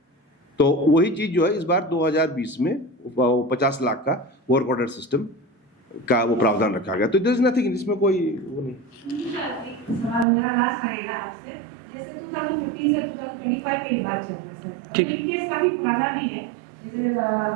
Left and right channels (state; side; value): drops out; left; at 10.2 s